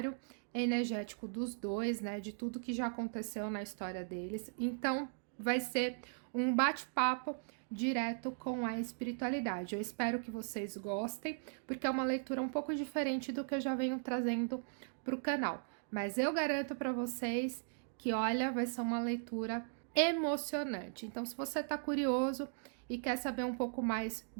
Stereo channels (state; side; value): silent; left; digital silence